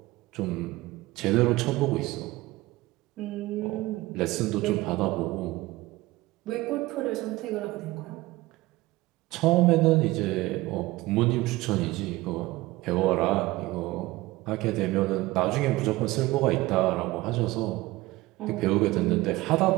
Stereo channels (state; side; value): quieter; left; 19.3 dB